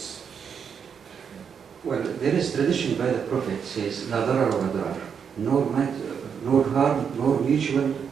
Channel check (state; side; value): quieter; left; 7.0 dB